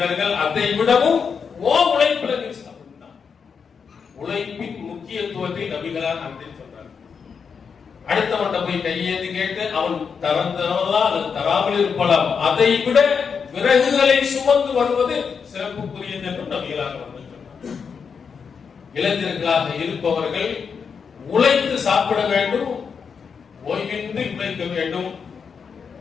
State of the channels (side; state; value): right; quieter; 6.1 dB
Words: அதை விடவும் ஓ உழைப்புல நீ சாப்பிட்டான். உழைப்பின் முக்கியத்துவத்தை நபிகளார் அன்றே சொன்னார். அடுத்தவன்கிட்ட போய் கையேந்து கேட்டு அவன் தரந்தவனா அல்லது தராமல் இருப்பலாம், அதை விட விறகுகளை சுமந்து வருவது சிறப்புக்குரியது என்று நபிகளார் வந்து சொன்னார். இளைஞர்களாக இருப்பவர்கள் உழைத்து சாப்பிட வேண்டும், ஓய்வின்றி உழைக்க வேண்டும்.